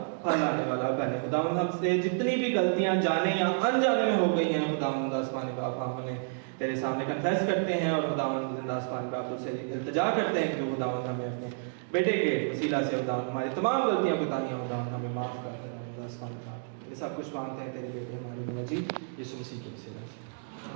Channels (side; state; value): left; silent; digital silence